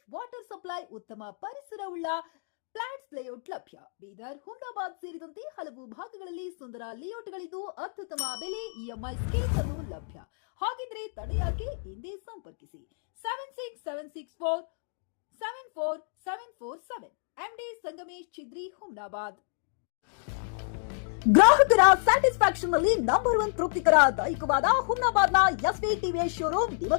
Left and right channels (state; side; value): silent; right; digital silence